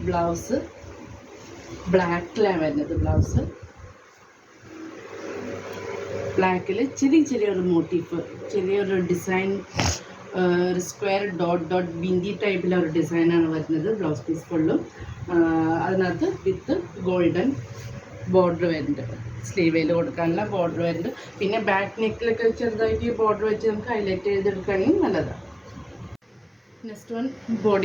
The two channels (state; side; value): identical; both; correlation 1.00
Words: ബ്ലൗസ് ബ്ലാക്കിലാണ് വരുന്നത്. ബ്ലൗസ് ബ്ലാക്കിൽ ചെറിയൊരു മോട്ടീഫ്, ചെറിയൊരു ഡിസൈൻ, ഒരു സ്ക്വയർ ഡോട്ട് ബിന്ദി ടൈപ്പിലൊരു ഡിസൈനാണ് വരുന്നത് ബ്ലൗസ് പീസ് ഫുള്ളും. അതിനകത്ത് വിത്ത് ഗോൾഡൻ ബോർഡർ വരുന്നുണ്ട്. സ്ലീവേൽ കൊടുക്കാനുള്ള ബോർഡർ വരുന്നുണ്ട്. പിന്നെ ബാക്ക് നെക്കിലൊക്കെ ചെറുതായിട്ട് ഈ ബോർഡർ വെച്ച് നമുക്ക് ഹൈലൈറ്റ് ചെയ്തെടുക്കുകയാണെങ്കിൽ നല്ലതാണ്. Next one